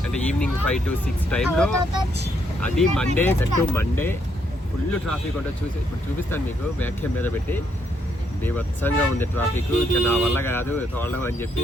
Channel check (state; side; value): normal; both; correlation 0.75